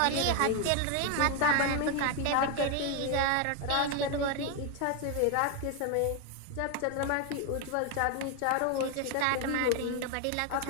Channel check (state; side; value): different; both; correlation 0.01